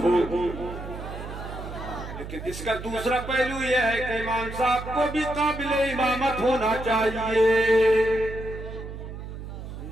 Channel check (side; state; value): right; noise; hum, 10 dB below the sound